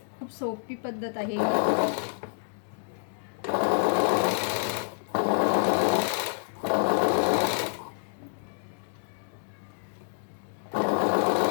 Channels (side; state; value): right; silent; digital silence